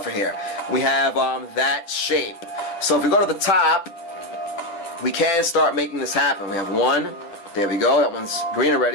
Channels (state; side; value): late; right; 10 ms